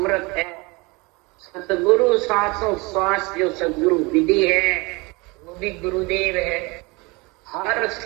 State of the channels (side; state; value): left; quieter; 25.9 dB